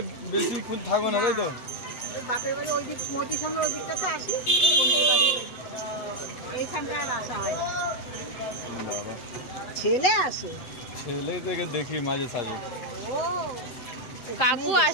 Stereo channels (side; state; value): right; late; 7.9 ms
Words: বেশিক্ষণ থাকবো না তাই তো? বাপের বাড়ি ওই দিক মতির সঙ্গে ওই দিকটাতে আসি, বোনের বাড়ি এইখানটায় আর আসা হয় না। ছেলে আসে, ছেলে থেকে দেখি মাঝে সাঝে। ও কাকু